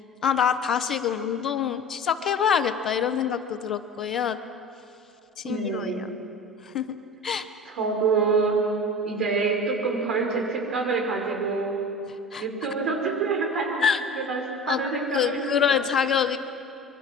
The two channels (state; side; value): normal; both; correlation 0.35